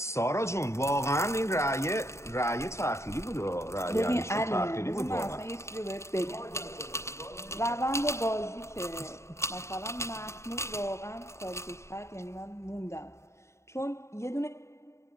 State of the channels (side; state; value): right; late; 0.14 ms